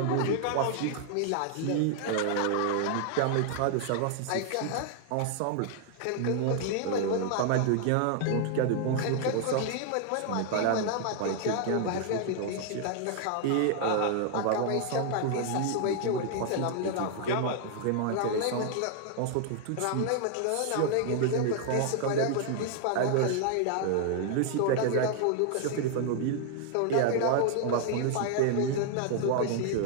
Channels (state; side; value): different; both; correlation 0.00